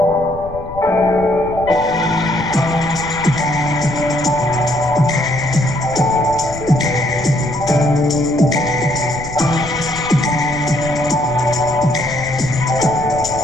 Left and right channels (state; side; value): noise; left; rumble, 14 dB below the sound